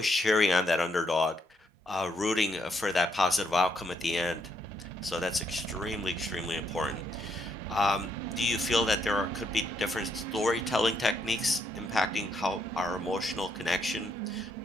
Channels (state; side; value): normal; both; correlation 0.75